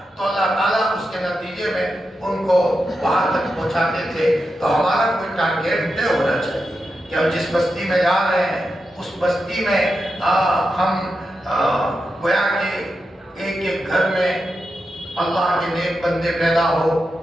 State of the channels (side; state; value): both; normal; correlation 0.88